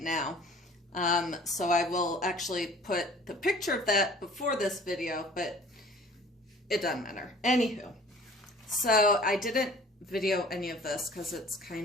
now. So I will actually put the picture of that before this video, but it doesn't matter. Anywho, so I didn't video any of this because it's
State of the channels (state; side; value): normal; both; correlation 0.49